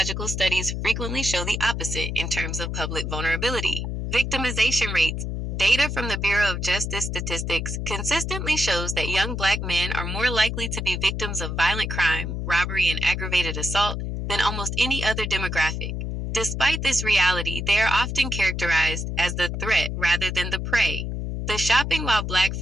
studies frequently show the opposite in terms of public vulnerability. Victimization rates. Data from the Bureau of Justice Statistics consistently shows that young black men are more likely to be victims of violent crime, robbery, and aggravated assault than almost any other demographic. Despite this reality, they are often characterized as the threat rather than the prey. The shopping while black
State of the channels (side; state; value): left; noise; hum, 3 dB below the sound